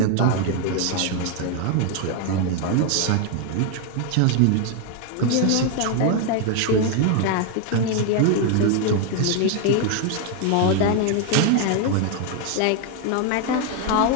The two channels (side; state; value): both; different; correlation 0.01